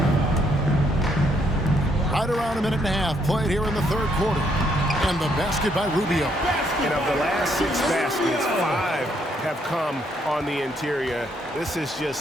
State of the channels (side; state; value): both; normal; correlation 0.72